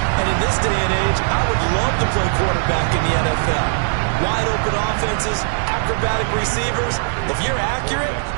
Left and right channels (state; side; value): silent; left; digital silence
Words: And in this day and age, I would love to play quarterback in the NFL. Wide open offenses, acrobatic receivers. If you're accurate,